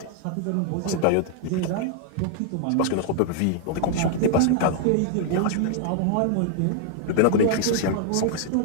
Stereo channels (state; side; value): different; both; correlation 0.00